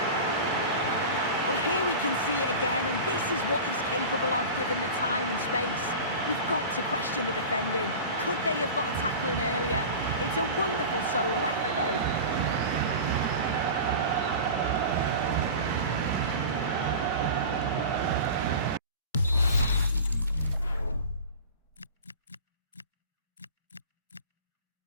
Well, here we can see it again, and this is what he's capable of given the time and space. We've got to question the defending. Could they have got a tackle in earlier? It's a wonderful solo effort, though.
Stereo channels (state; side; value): inverted; both; correlation -0.33